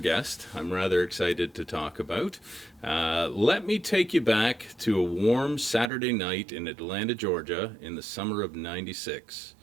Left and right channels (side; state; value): left; drops out; at 5.9 s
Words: I'm rather excited to talk about. Let me take you back to a warm Saturday night in Atlanta, Georgia in the summer of '96.